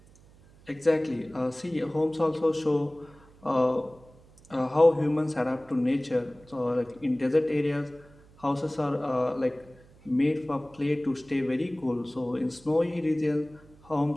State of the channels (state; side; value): noise; right; hum, 26 dB below the sound